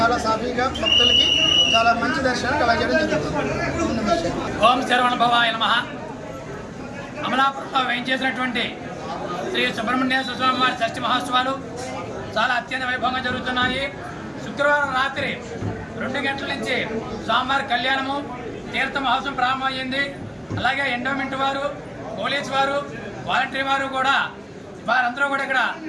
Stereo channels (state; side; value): identical; both; correlation 1.00